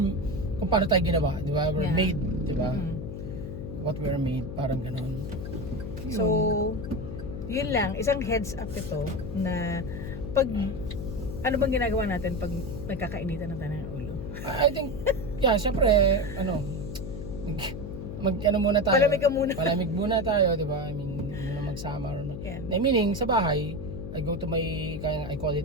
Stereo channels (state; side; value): noise; left; hum, 8 dB below the sound